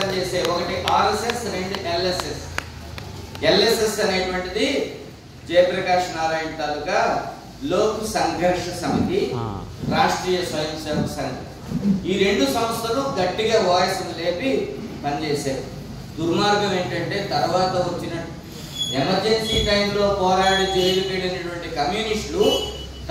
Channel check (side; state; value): both; identical; correlation 1.00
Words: ఒకటి ఆర్ఎస్ఎస్, 2 ఎల్ఎస్ఎస్. ఎల్ఎస్ఎస్ అనేటువంటిది జయప్రకాష్ నారాయణ తాలూకా లోక్ సంఘర్ష సమితి, రాష్ట్రీయ స్వయం సేవక్ సంఘ్. ఈ 2 సంస్థలు గట్టిగా వాయిస్ లేపి పనిచేశారు. దుర్మార్గం ఏంటంటే తర్వాత వచ్చిన ఎమర్జెన్సీ టైంలో పోరాడి జైలుకి వెళ్ళినటువంటి కమ్యూనిస్టులు